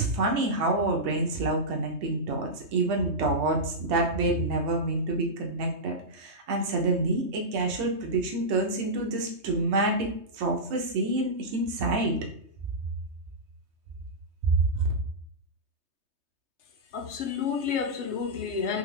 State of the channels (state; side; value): late; left; 3.2 ms